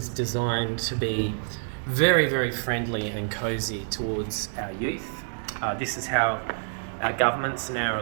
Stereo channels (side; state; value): left; silent; digital silence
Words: designed to be very, very friendly and cozy towards our youth. This is how our governments and our